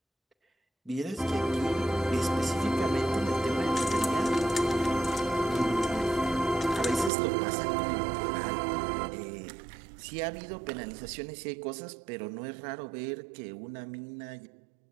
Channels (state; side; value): drops out; left; at 7.1 s